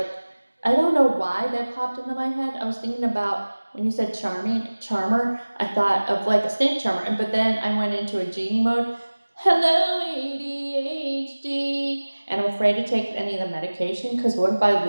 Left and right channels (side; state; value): both; inverted; correlation -1.00